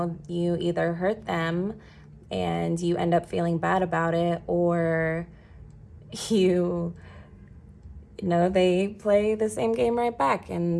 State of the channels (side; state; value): both; identical; correlation 1.00